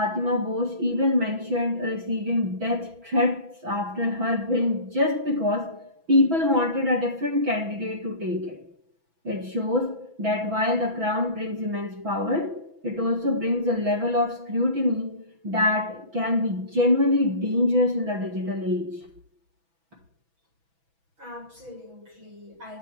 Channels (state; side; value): late; left; 6.1 ms